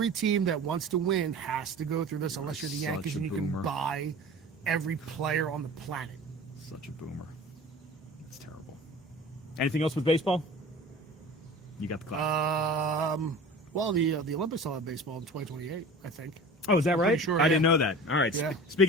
team that wants to win has to go through this, unless you're the Such Yankees a and you can boomer. buy every player on the planet. Such a boomer. It's terrible. Anything else with baseball? You got the clock. Well, the Olympics will have baseball in 2028, I think. Oh, is that right? sure, I yeah. didn't know that. All right. Yeah.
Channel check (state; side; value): normal; both; correlation 0.39